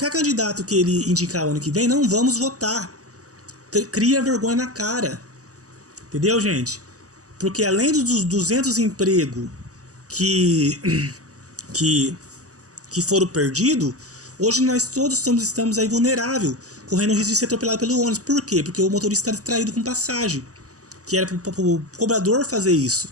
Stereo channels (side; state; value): left; late; 0.66 ms